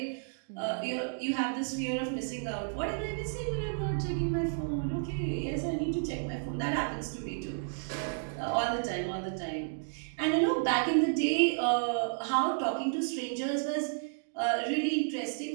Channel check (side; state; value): left; silent; digital silence